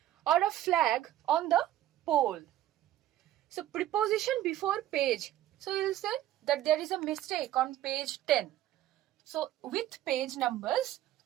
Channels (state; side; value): quieter; left; 13.3 dB